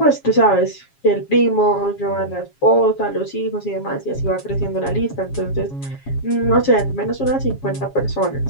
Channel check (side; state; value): right; late; 7.3 ms